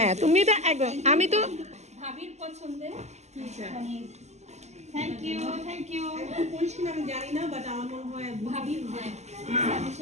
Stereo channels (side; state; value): left; late; 0.33 ms